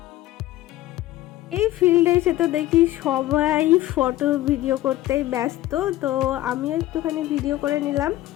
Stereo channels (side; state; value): right; quieter; 15.6 dB